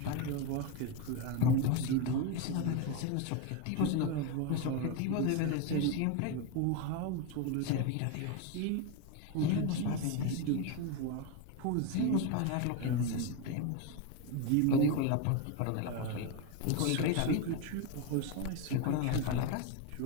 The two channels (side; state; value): both; different; correlation 0.03